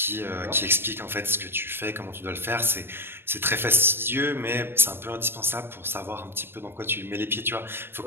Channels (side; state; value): left; late; 0.11 ms